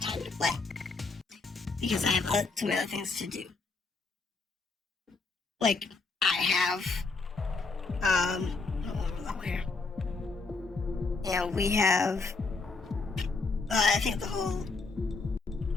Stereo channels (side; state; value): right; quieter; 4.0 dB